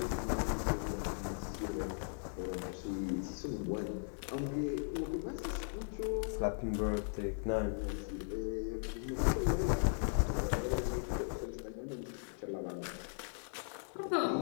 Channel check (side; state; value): right; silent; digital silence